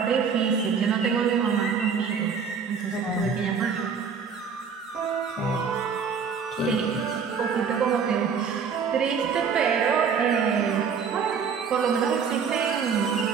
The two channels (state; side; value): quieter; left; 6.2 dB